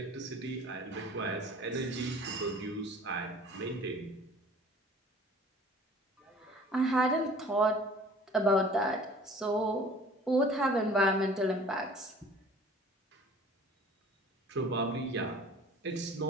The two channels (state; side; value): normal; both; correlation 0.48